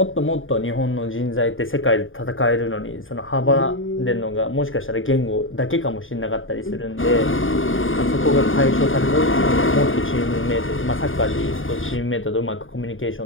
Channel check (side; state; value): right; late; 0.58 ms